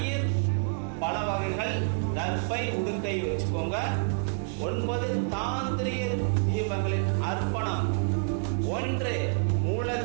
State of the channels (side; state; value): left; silent; 59 dB below the other